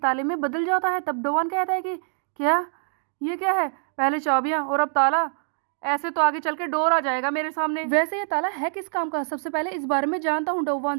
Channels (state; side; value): silent; left; 62 dB below the other